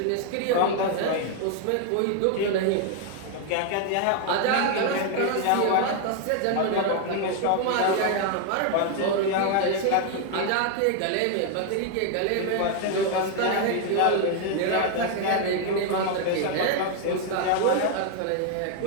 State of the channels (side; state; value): both; different; correlation 0.00